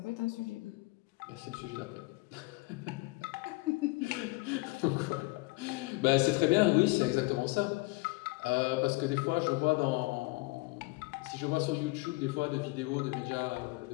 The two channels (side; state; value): right; quieter; 23.9 dB